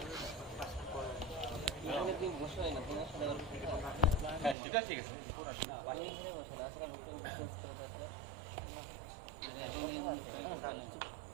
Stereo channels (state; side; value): drops out; left; at 4.5 s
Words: হ্যাঁ সেটা ঠিক আছে